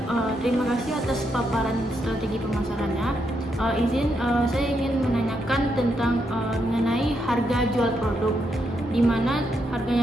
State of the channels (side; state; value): both; normal; correlation 0.80